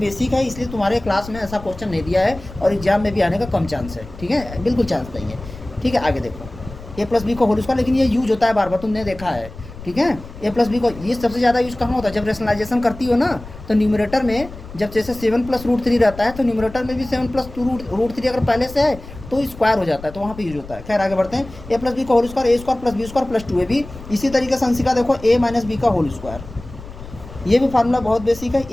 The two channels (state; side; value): noise; left; rumble, 15 dB below the sound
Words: है इसलिए तुम्हारे क्लास में ऐसा क्वेश्चन नहीं दिया है और एग्जाम में भी आने का कम चांस है। ठीक है, बिल्कुल चांस नहीं है। ठीक है, आगे देखो a प्लस बी का होल स्क्वायर, लेकिन ये यूज होता है बार बार, तुमने देखा है। ठीक है, a प्लस बी को ये सबसे ज़्यादा यूज़ कहाँ होता है, जब रेशनलाइजेशन करती हो ना, तो न्यूमरेटर में जब जैसे 7 प्लस √3 रहता है, तो न्यूमरेटर में भी 7 प्लस √3 अगर पहले से है तो स्क्वायर हो जाता है, तो वहाँ पे यूज होता है। खैर आगे बढ़ते हैं, a प्लस बी का whole square a² plus b² plus 2ab। इसी तरीके से अंशिका देखो a माइनस बी का होल स्क्वायर, ये भी फार्मूला बहुत बेसिक है,